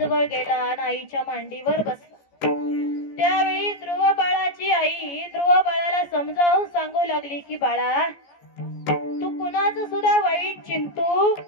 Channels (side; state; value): right; late; 14 ms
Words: गेला आणि आईच्या मांडीवर बसला. त्यावेळी ध्रुव बाळाची आई ध्रुव बाळाला समजावून सांगू लागली की बाळा, तू कुणाचं सुद्धा वाईट चिंतू